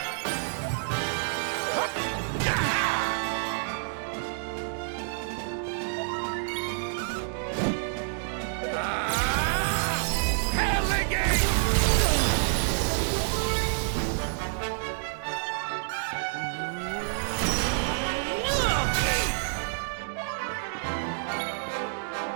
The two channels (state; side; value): silent; left; digital silence